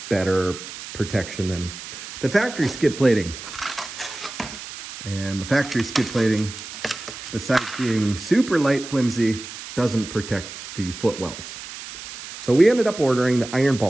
better protection than the factory skid plating. And the factory skid plating, besides being super light, flimsy, doesn't protect the footwells. So we ended up ordering the Iron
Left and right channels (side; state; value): right; noise; hiss, 12 dB below the sound